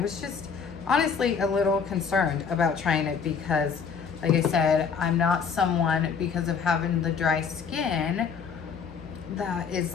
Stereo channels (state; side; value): quieter; right; 6.1 dB